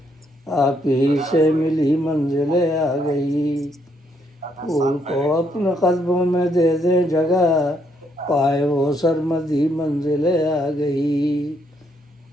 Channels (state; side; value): normal; both; correlation 0.73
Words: آپ ہی سے ملی منزل آ گئی۔ پھول کو اپنے قدموں میں دے دے جگہ، پائے وہ سرمدی منزل آ گئی۔